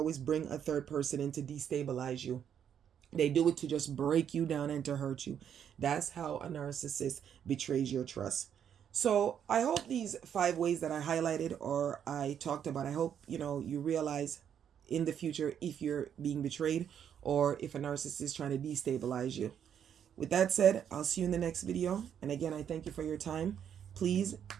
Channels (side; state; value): left; quieter; 8.8 dB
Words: bring a third person in to destabilize you. They do it to just break you down and to hurt you. That's how a narcissist betrays your trust. So I hope these 5 ways that I highlighted or I talked about, I hope, you realize in the future if you're being betrayed or if a narcissist is trying to destabilize you. With that said, I'll see you in the next video. And again, I thank you for your time. Please